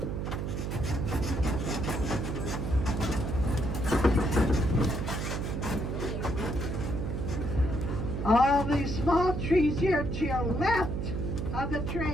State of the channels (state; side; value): noise; right; hum, 3 dB below the sound